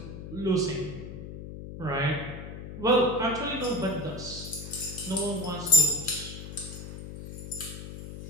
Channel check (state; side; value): noise; left; hum, 10 dB below the sound